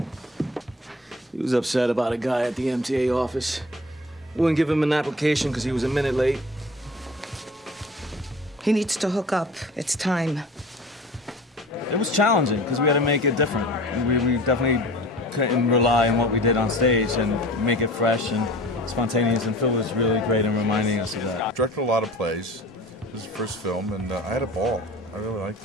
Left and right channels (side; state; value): both; normal; correlation 0.41